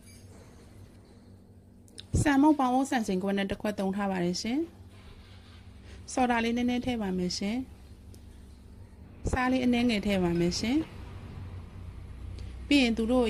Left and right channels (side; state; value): both; identical; correlation 1.00